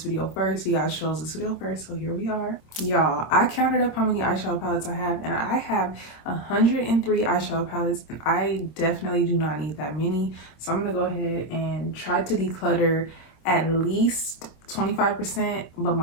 video first. You guys chose this video first, so here we are. Y'all, I counted up how many eyeshadow palettes I have, and I have 103 eyeshadow palettes, and I definitely do not need that many. So I'm gonna go ahead and try to declutter at least 25%, but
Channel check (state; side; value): late; right; 26 ms